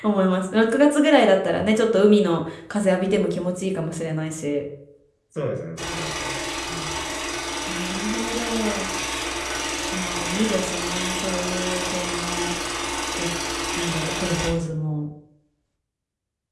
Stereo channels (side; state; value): both; identical; correlation 1.00